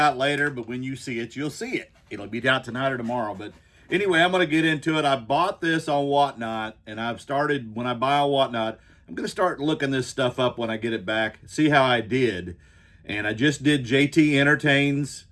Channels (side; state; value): both; identical; correlation 1.00